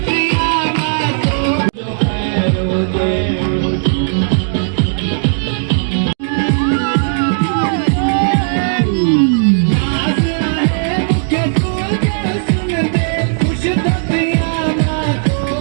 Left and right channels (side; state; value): left; silent; digital silence